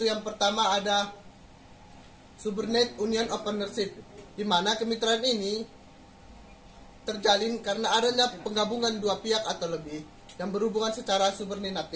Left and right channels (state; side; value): identical; both; correlation 1.00